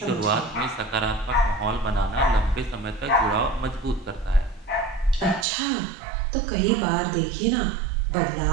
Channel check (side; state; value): left; drops out; at 5.5 s